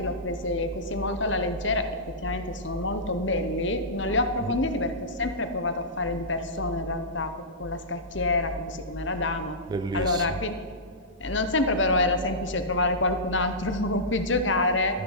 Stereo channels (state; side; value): normal; both; correlation -0.15